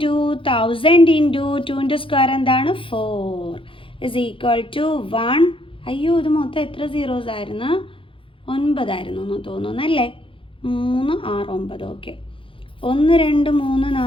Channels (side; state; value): right; late; 0.25 ms